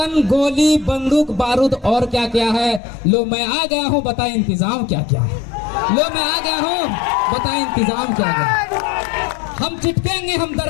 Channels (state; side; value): drops out; right; at 2.8 s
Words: गोली बंदूक बारूद और क्या क्या है। लो मैं आ गया हूँ, बता इंतजाम क्या क्या है। लो मैं आ गया हूँ, बता इंतजाम क्या क्या है। हम चिटकेंगे, हम